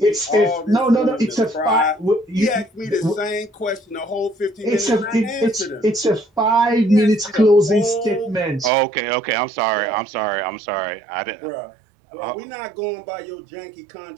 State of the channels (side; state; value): left; drops out; at 8.7 s